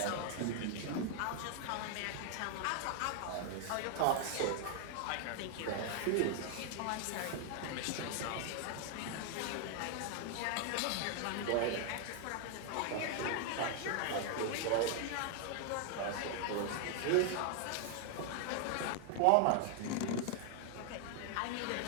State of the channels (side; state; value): both; different; correlation 0.00